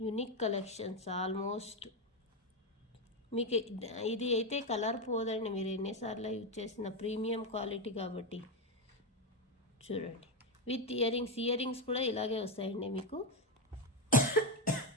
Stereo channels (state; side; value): normal; both; correlation 0.09